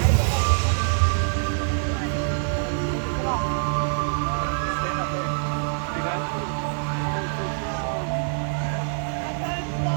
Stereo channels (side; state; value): left; silent; digital silence